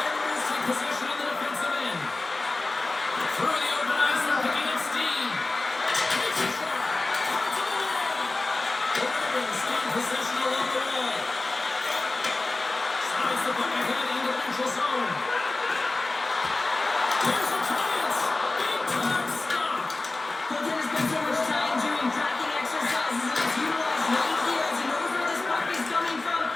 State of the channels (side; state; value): right; quieter; 3.2 dB